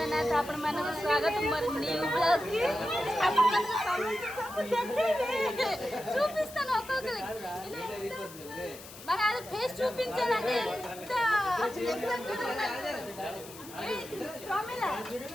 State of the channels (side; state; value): left; noise; hiss, 16 dB below the sound